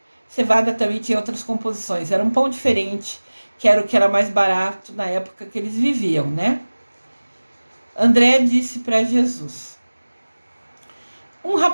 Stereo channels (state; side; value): inverted; both; correlation -1.00